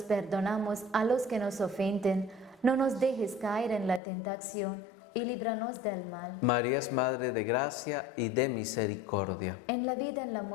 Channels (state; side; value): drops out; right; at 4.0 s